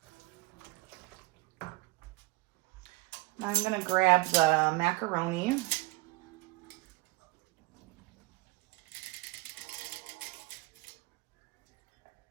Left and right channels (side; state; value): left; quieter; 22.0 dB